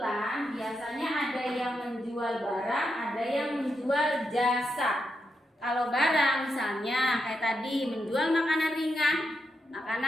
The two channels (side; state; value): both; normal; correlation 0.84